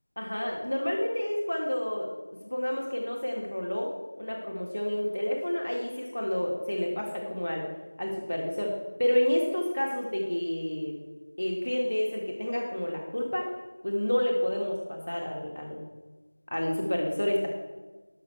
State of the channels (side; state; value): both; inverted; correlation -1.00